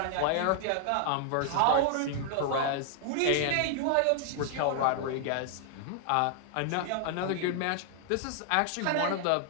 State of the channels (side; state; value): both; different; correlation 0.00